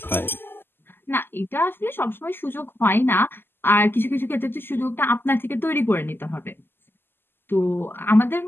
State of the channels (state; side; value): late; right; 0.10 ms